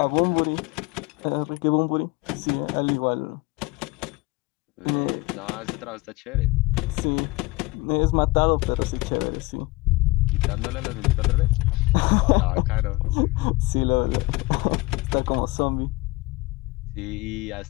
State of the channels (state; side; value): quieter; right; 22.8 dB